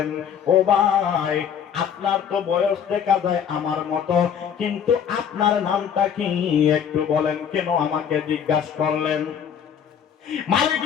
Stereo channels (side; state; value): right; quieter; 8.1 dB